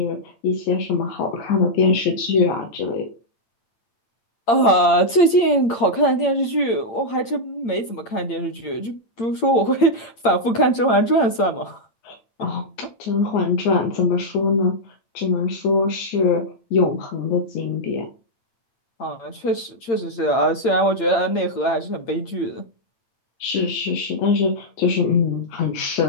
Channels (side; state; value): right; late; 8.8 ms